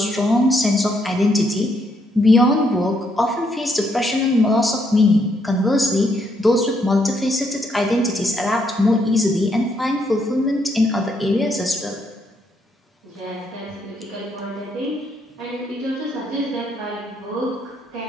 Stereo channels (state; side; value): normal; both; correlation 0.74